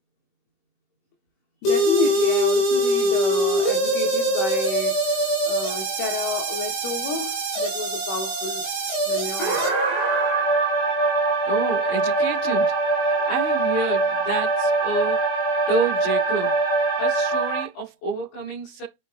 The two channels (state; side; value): late; right; 21 ms